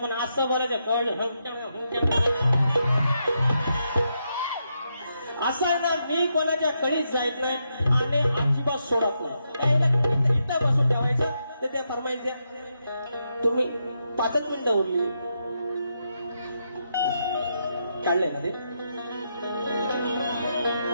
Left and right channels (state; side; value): inverted; both; correlation -0.82